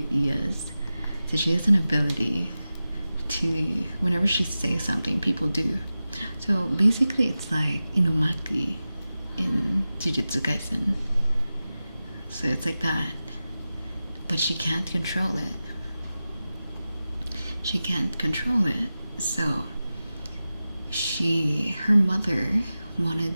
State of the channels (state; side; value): inverted; both; correlation -0.94